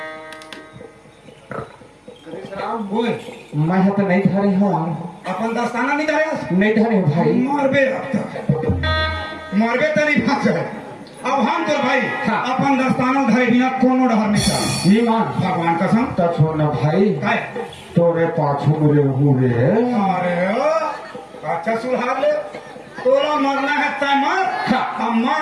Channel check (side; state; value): both; identical; correlation 1.00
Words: ओए मैं तो नहीं धरे हूँ अपन दस्ताना नहीं धरे नहीं धरे भाई मारबे मारबे तो नहीं फंस है अब हम तो भाई हाँ। अपन दस्ताना धरे बिना कोनो डहर नहीं था ईमान भगवान कसम तो छोड़ना भाई काय तोरे पाछू मेरे हुए अरे अच्छा सुधार ले तोरा मरना है तय मर हाँ। अब मैं